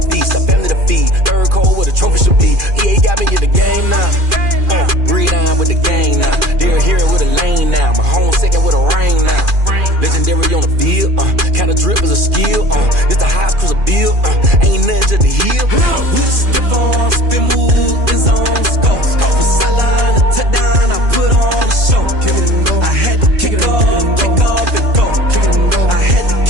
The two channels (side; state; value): left; late; 2.4 ms